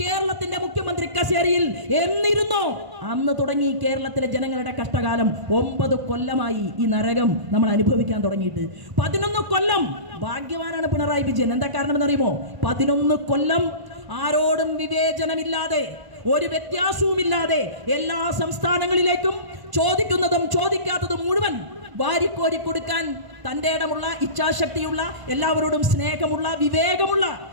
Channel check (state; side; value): late; left; 1.0 ms